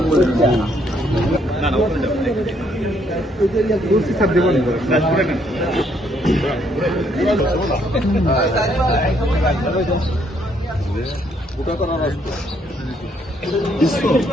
স্যার দেবো ওটা করার আসবে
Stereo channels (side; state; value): both; normal; correlation 0.70